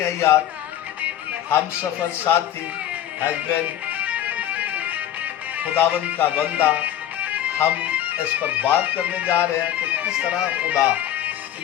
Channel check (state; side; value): quieter; right; 11.5 dB